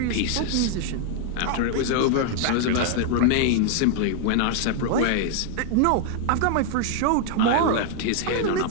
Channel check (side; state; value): both; different; correlation 0.00